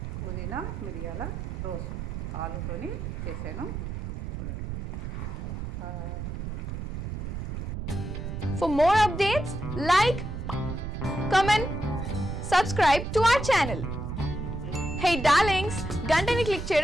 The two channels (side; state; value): right; noise; rumble, 5 dB below the sound